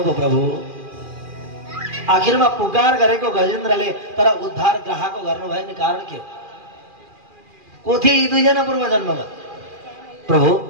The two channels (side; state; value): left; late; 2.4 ms